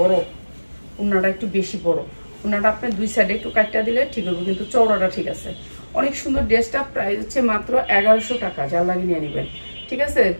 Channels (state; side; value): inverted; both; correlation -1.00